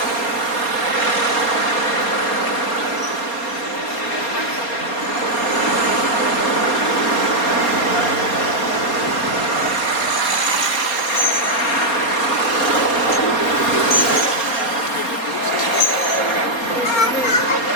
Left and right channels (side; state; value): right; late; 4.2 ms